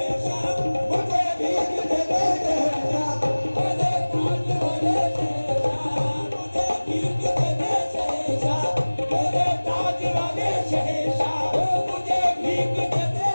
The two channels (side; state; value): both; inverted; correlation -1.00